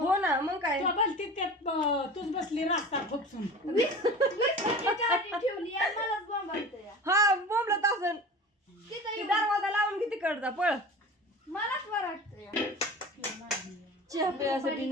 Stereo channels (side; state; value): both; normal; correlation 0.36